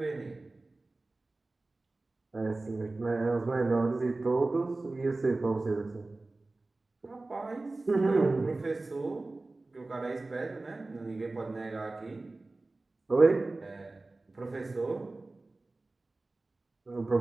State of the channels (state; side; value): quieter; left; 3.2 dB